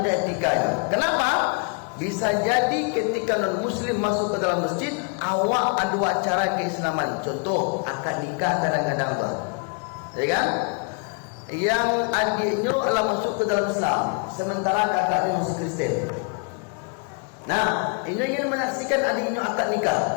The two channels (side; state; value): right; quieter; 39.3 dB